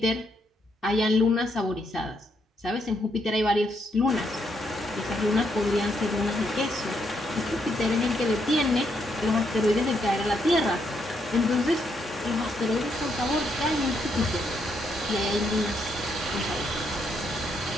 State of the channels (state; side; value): normal; both; correlation 0.76